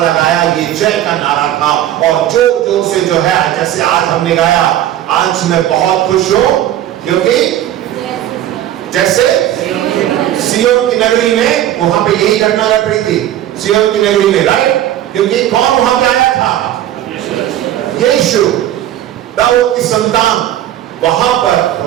ये जय का नारा था। और जोर जोर से जो है, जैसे आज हमने गाया, आज मैं बहुत खुश हूं क्योंकि जैसे सियोन की नगरी में, वहां पे यही घटना घट रही थी सियोन की नगरी में, राइट? क्योंकि कौन वहां पे आया था? यीशु, दाऊद की संतान। वहां पर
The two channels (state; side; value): quieter; left; 12.3 dB